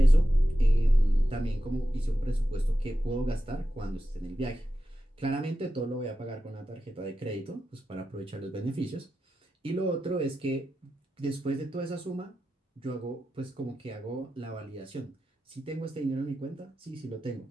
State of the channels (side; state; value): both; normal; correlation 0.91